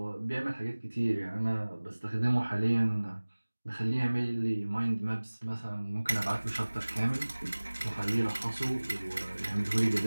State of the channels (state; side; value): inverted; both; correlation -1.00